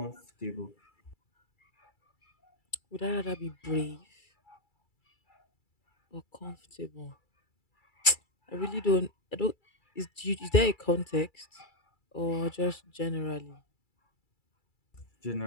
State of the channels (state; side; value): late; right; 2.3 ms